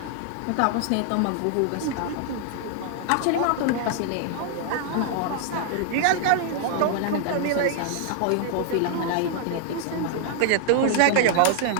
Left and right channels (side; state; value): both; different; correlation 0.00